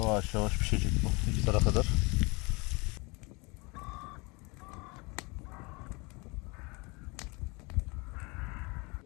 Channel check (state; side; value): quieter; right; 27.5 dB